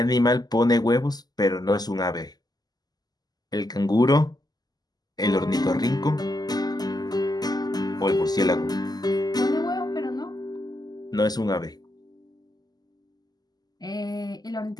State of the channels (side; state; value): right; late; 0.20 ms